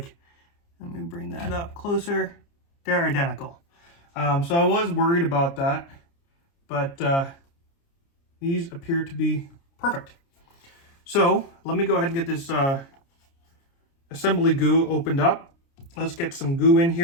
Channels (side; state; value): right; late; 29 ms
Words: let me bring that up closer. They're identical. So I was worried about that, but these appear to be perfect. So let me go ahead and get this assembly goo opened up. Let's get some goo in